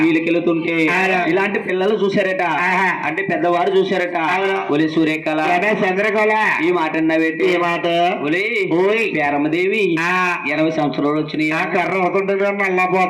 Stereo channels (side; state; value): both; identical; correlation 1.00